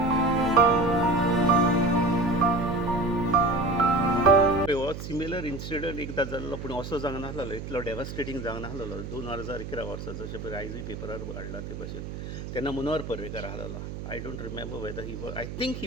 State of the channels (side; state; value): right; noise; hum, 8 dB below the sound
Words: सिमिलर इन्सिडंट एकदा जाल्लो, पूण असो जावंक नासलो, इतलो डेवास्टेटींग जावंक नासलो. 2011 वर्सा जशें पळय आयजूय पेपरार हाडला ते भशेन. तेन्ना मनोहर पर्रीकार आसलो. I don't remember weather he was, I think